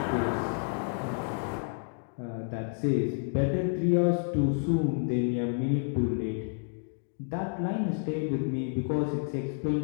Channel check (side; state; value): right; silent; digital silence